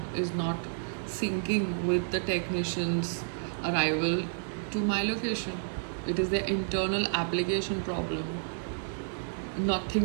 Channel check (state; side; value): silent; left; digital silence